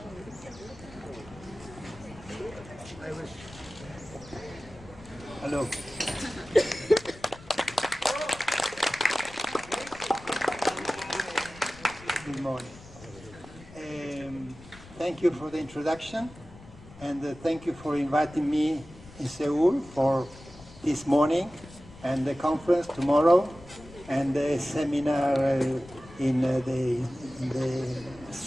Hello. Good morning. Thank you for the introduction. And thank you for inviting me in Seoul for this morning and the conference tomorrow and the seminar in the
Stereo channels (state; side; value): noise; left; rumble, 19 dB below the sound